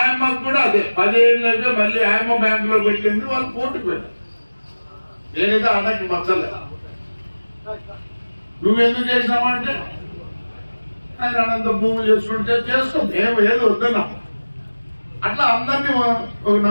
కూడా అదే 10 ఏళ్ళకే మళ్ళీ ఆయమ్మ బ్యాంక్ లో పెట్టింది. వాళ్ళు కోర్టుకు వెళ్ళారు. నేనైతే అన్నకి మచ్చలే. నువ్వెందుకు చేసినావంటే ఆయన అనంత భూములు చేసుకుంటే చేసుకో, మేము ఏదో వద్దన్నాం. అట్లా అందరినీ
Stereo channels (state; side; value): inverted; both; correlation -1.00